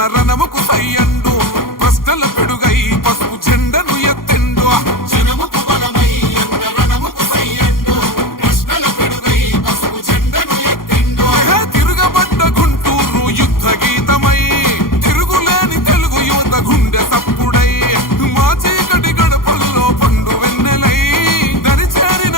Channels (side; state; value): right; late; 0.91 ms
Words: రణముకు సై అండు ప్రశ్నల పెడుగై పసుపు జెండను ఎత్తెండు జనముకు బలమై అన్న రణముకు సై అండు ప్రశ్నల పెడుగై పసుపు జెండను ఎత్తెండు తిరుగబడ్డ గుంటూరు యుద్ధ గీతమై తిరుగులేని తెలుగు యువత గుండె సప్పుడై మా చీకటి గడపల్లో పండు వెన్నెలై